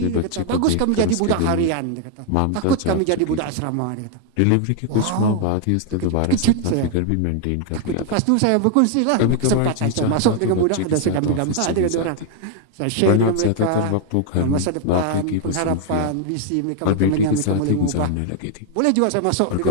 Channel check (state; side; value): different; both; correlation 0.00